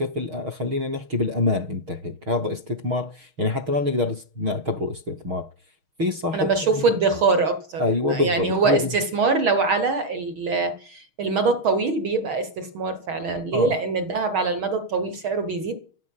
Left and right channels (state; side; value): late; left; 6.4 ms